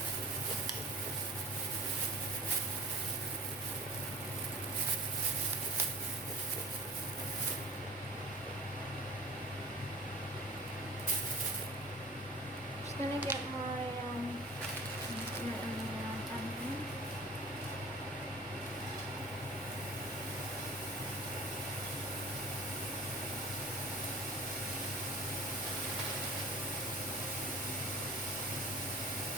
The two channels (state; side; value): normal; both; correlation 0.41